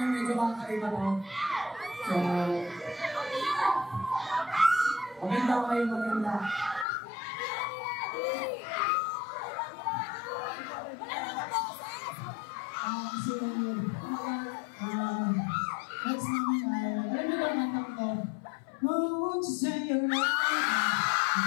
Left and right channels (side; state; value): right; drops out; at 6.9 s